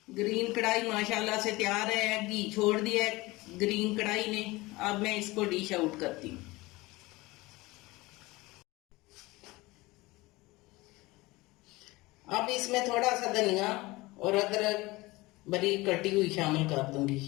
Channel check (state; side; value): quieter; right; 21.4 dB